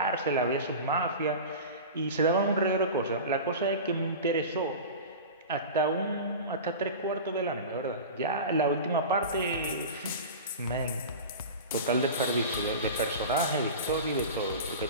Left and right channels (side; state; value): both; inverted; correlation -0.31